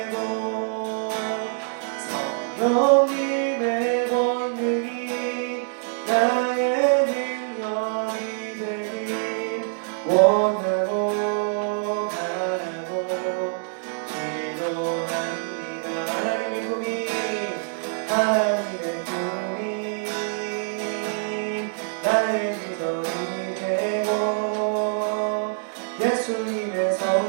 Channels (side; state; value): left; silent; 62 dB below the other